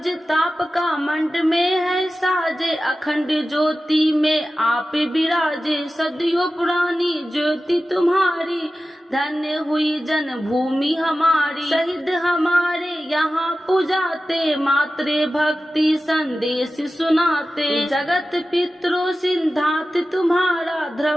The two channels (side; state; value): both; normal; correlation 0.94